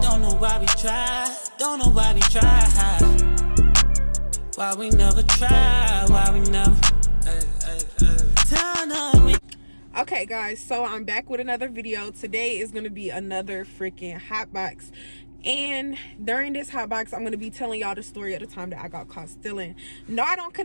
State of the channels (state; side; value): inverted; both; correlation -1.00